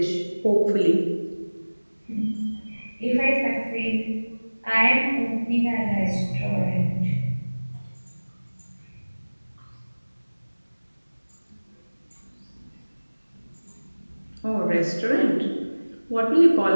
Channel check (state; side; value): inverted; both; correlation -1.00